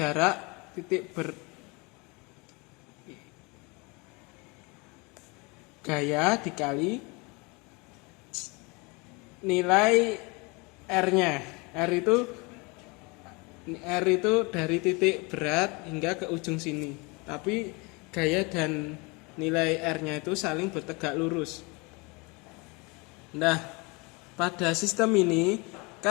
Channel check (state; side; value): quieter; right; 28.0 dB